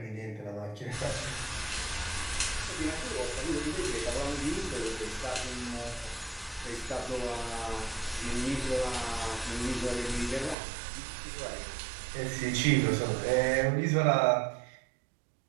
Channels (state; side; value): drops out; left; at 10.6 s